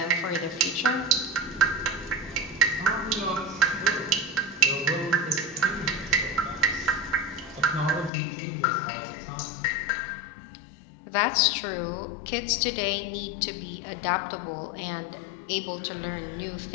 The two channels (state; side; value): drops out; right; at 8.1 s